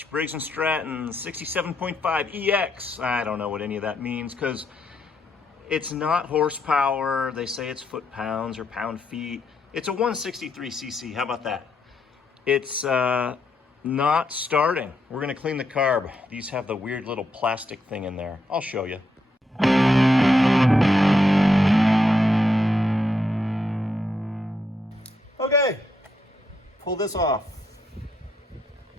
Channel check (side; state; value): both; normal; correlation 0.79